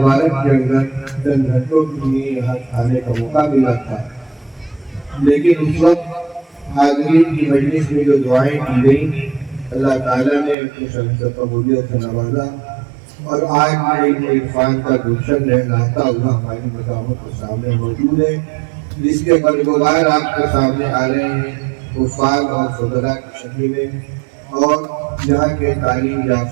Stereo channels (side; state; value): left; drops out; at 10.6 s